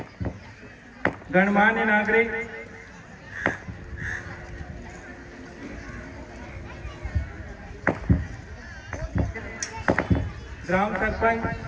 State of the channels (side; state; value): both; identical; correlation 1.00